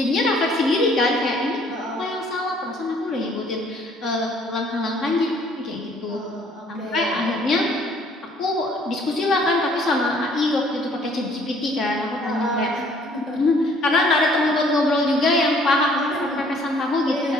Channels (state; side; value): normal; both; correlation 0.59